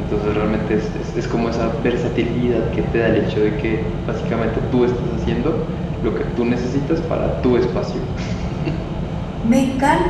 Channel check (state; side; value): identical; both; correlation 1.00